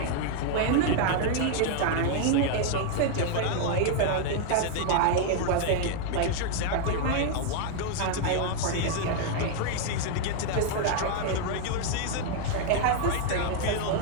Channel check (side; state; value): both; different; correlation 0.00